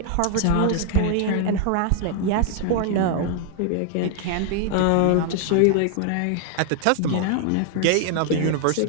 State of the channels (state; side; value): different; both; correlation 0.00